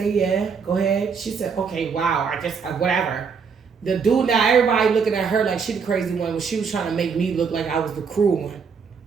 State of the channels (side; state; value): left; quieter; 5.9 dB